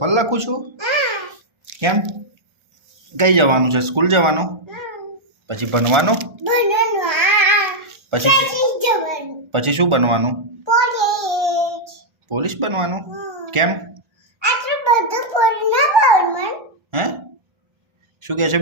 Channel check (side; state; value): left; late; 1.4 ms